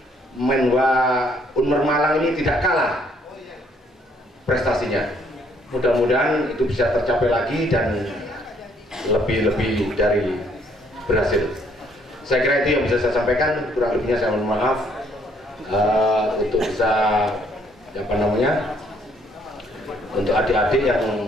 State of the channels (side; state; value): both; normal; correlation 0.66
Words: Menwa Unmer Malang ini tidak kalah prestasinya. Mudah-mudahan itu bisa tercapai lagi dan lebih dari berhasil. Saya kira itu yang bisa saya sampaikan. Kurang lebihnya saya mohon maaf. Untuk bisa untuk adik-adik yang